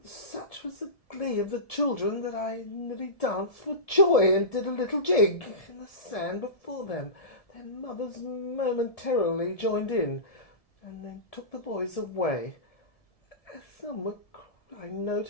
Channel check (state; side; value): late; right; 1.7 ms